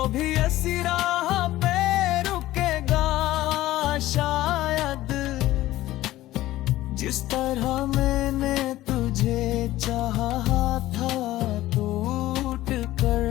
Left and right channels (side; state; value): right; quieter; 15.8 dB